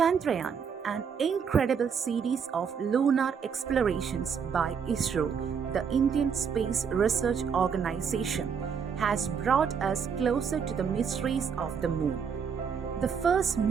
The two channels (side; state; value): left; quieter; 6.7 dB